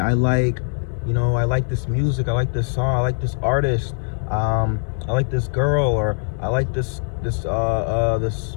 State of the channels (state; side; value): silent; right; digital silence